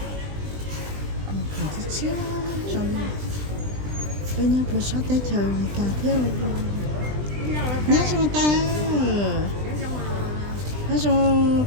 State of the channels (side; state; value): left; late; 20 ms